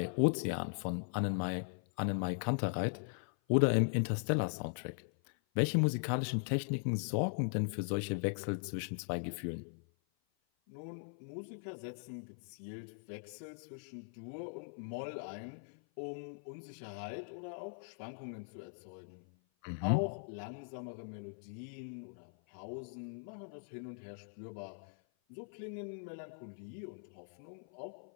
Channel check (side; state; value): right; silent; 51 dB below the other